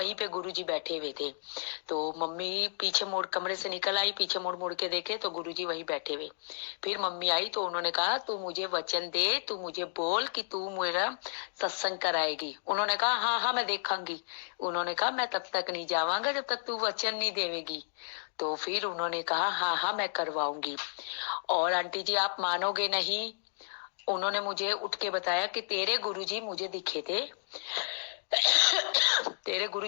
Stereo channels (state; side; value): silent; right; digital silence